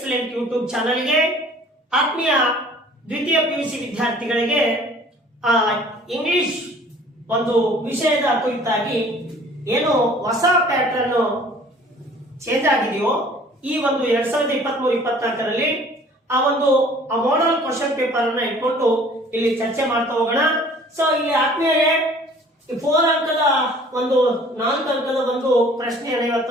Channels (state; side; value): normal; both; correlation 0.51